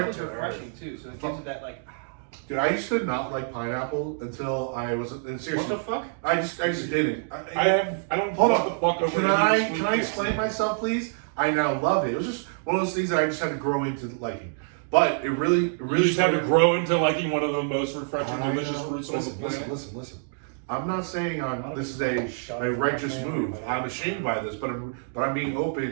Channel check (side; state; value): left; silent; digital silence